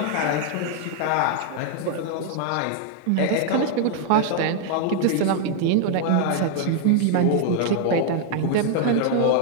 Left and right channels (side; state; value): both; different; correlation 0.00